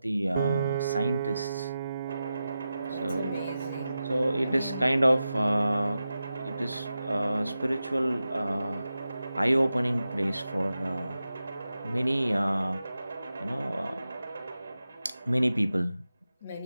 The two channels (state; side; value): inverted; both; correlation -0.92